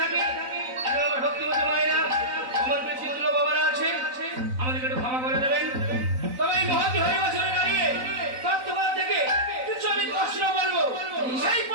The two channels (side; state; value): left; late; 3.9 ms